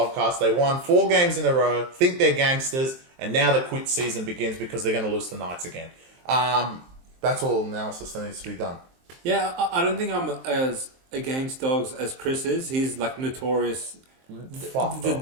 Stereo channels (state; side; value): late; left; 23 ms